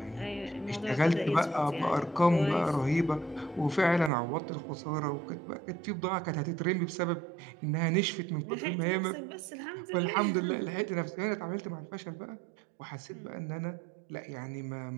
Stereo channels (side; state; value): left; drops out; at 4.1 s